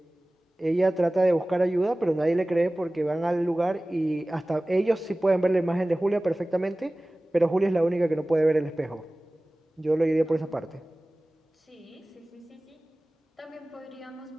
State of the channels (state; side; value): normal; both; correlation 0.98